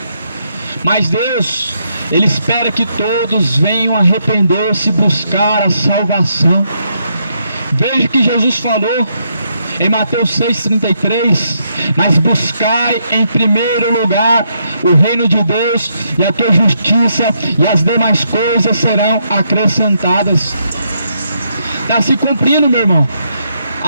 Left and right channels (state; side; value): inverted; both; correlation -0.77